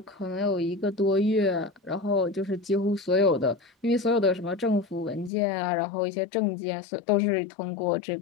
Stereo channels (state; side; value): drops out; right; at 5.3 s